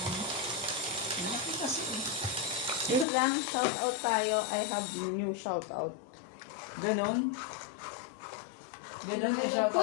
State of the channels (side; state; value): right; drops out; at 3.1 s